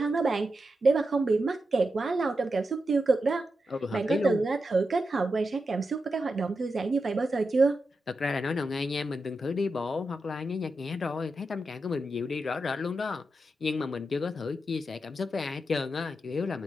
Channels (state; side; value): normal; both; correlation 0.88